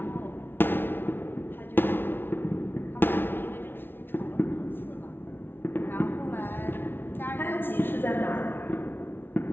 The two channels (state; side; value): late; right; 0.11 ms